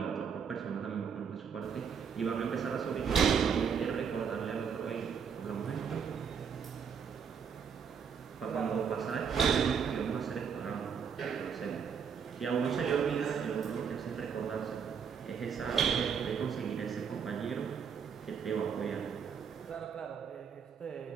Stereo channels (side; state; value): left; quieter; 6.9 dB